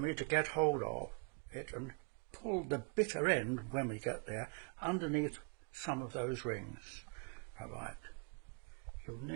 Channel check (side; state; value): left; quieter; 36.8 dB